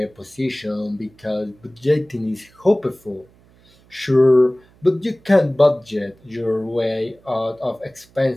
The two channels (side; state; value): right; noise; hum, 29 dB below the sound